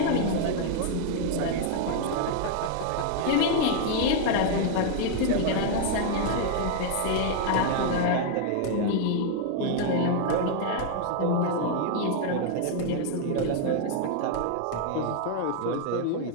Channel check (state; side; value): different; both; correlation 0.00